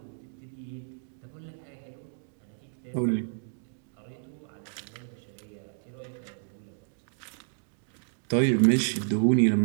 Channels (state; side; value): silent; left; digital silence